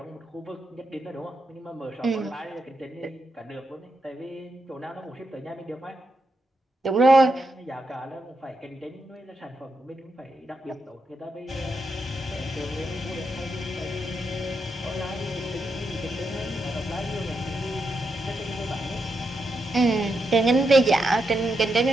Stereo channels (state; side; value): normal; both; correlation 0.84